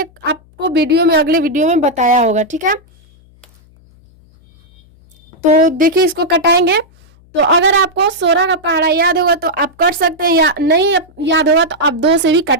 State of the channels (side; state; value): left; noise; hum, 29 dB below the sound